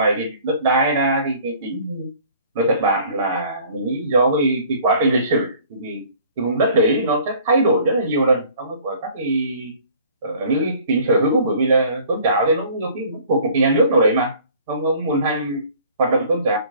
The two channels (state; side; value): inverted; both; correlation -0.52